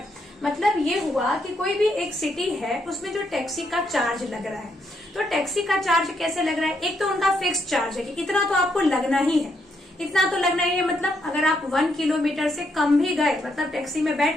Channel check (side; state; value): both; normal; correlation 0.77